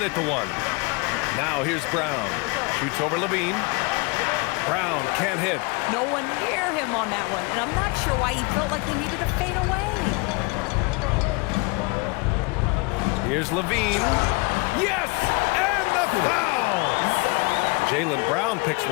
at the 1. Now here's Brown. Shoots over Levine. Brown can't hit. No one near him on that one, and I'm not sure why he felt like he needed to fade away. Here's Levine. Yes! And the foul! Jaylen Brown picks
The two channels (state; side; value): quieter; right; 28.3 dB